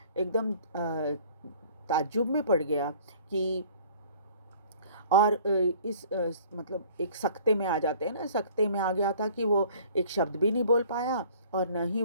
एकदम ताज्जुब में पड़ गया कि, और इस मतलब एक सकते में आ जाते हैं ना, सकते में आ गया था कि वो एक शब्द भी नहीं बोल पाया और न ही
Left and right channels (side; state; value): both; inverted; correlation -0.52